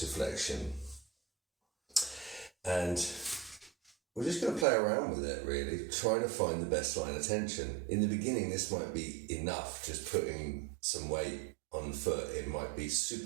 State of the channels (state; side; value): drops out; left; at 4.7 s